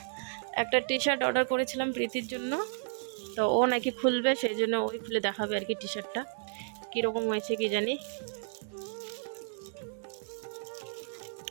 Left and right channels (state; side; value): silent; left; digital silence